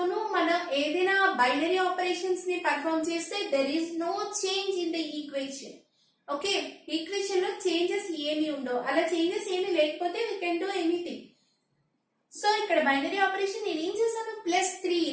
మనం ఏదైనా binary operations ని perform చేస్తే there is no change in the equation. Okay, equation లో changes ఏమి ఉండవు. అలా చేంజెస్ ఏమి లేకపోతే we can do anything. So ఇక్కడ బైనరీ ఆపరేషన్ నేను ఏం చేశాను, +3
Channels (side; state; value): both; identical; correlation 1.00